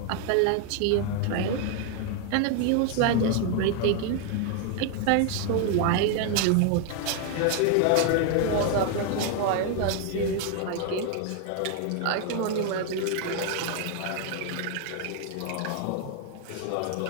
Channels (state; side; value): different; both; correlation 0.00